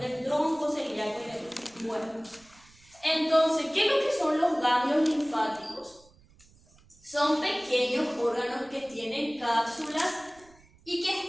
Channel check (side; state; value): right; noise; rumble, 28 dB below the sound